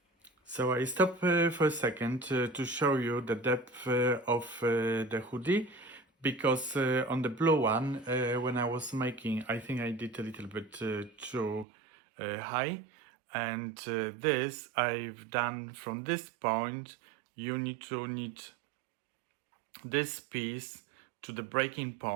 So I stop for a second to show you the depth of the hoodie, because on the blue one, when I was making, I think I did a little bit too high, and this I've done from this point. You need to knit this piece to the breaking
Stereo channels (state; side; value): drops out; left; at 11.7 s